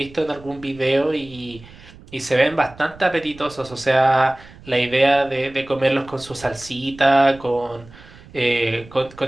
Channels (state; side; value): noise; right; rumble, 21 dB below the sound